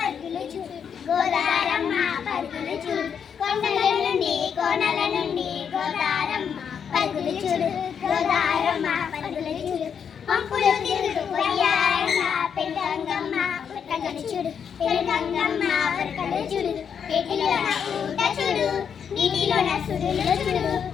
చూడు. గోదారమ్మ పరుగులు చూడు. కొండలనుండి కోనల నుండి గోదారమ్మ పరుగులు చూడు. గోదారమ్మ పరుగులు చూడు. పంపులు తిరుగుతూ పోయారమ్మ పెళ్ళంగమ్మ పరుగులు చూడు. పెళ్ళంగమ్మ పరుగులు చూడు. ఏటిలోన ఊట చూడు. నీటిలోన సుడులు చూడు.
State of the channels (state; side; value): quieter; right; 7.4 dB